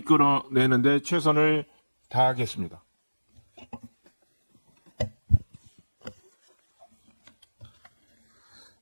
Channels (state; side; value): inverted; both; correlation -1.00